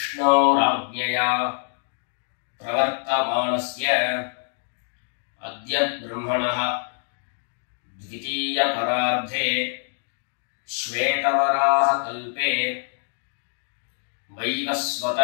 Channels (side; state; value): right; silent; 62 dB below the other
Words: प्रवर्तमानस्य अद्य ब्रह्मणः द्वितीयपरार्धे श्वेतवराहकल्पे वैवस्वत